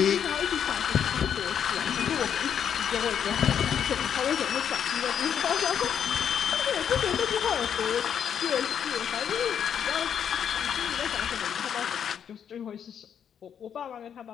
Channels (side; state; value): right; quieter; 8.4 dB